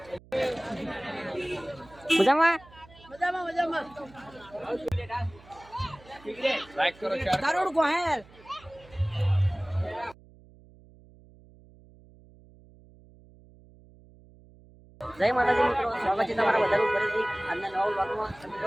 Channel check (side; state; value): right; noise; hum, 24 dB below the sound